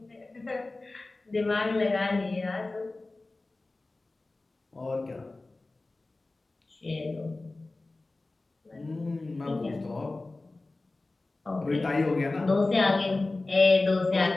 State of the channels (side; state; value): right; quieter; 3.1 dB